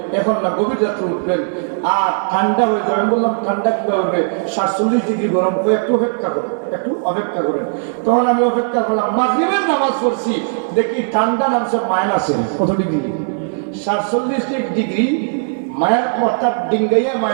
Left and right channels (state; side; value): silent; left; 62 dB below the other